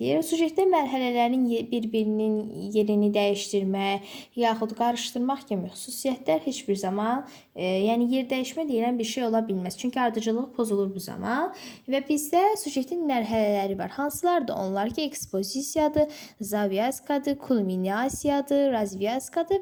Sujetdə mərhələlərin bir-birinin yerini dəyişdirmək, yaxud qarışdırmaq kimi xüsusiyyətlər heç bir zaman, yəni yer dəyişmə deyilən bir şey ola bilməz. Çünki ardıcıllıq pozulur bu zaman və bizdə sujetin mərhələləri var. Hansılardır onlar ki, ekspozisiyadır, zavyaskadır, kulminasiyadır,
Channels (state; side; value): identical; both; correlation 1.00